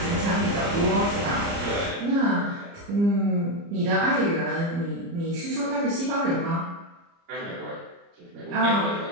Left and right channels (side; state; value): left; late; 30 ms